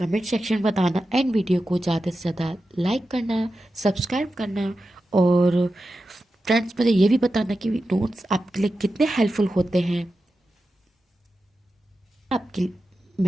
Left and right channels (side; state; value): both; normal; correlation 0.91